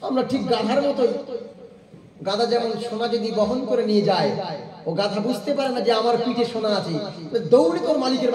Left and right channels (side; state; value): both; identical; correlation 1.00